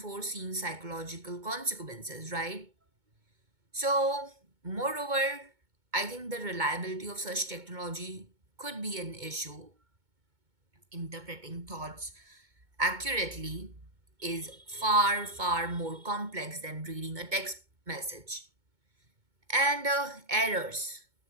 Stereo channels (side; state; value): left; late; 2.2 ms